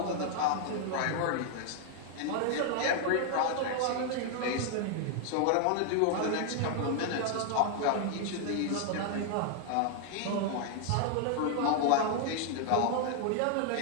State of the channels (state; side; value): different; both; correlation 0.00